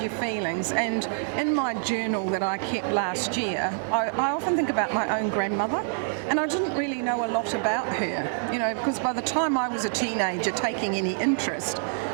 feelings. And in my journal that I kept last year, I often think about my own grandmother, and I didn't really know a lot about her, you know, because by the time I was a teenager taking any interest,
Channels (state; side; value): silent; left; 61 dB below the other